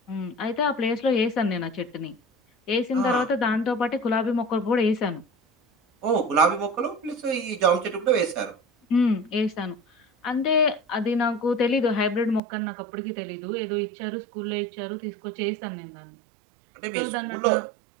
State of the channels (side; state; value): left; drops out; at 12.4 s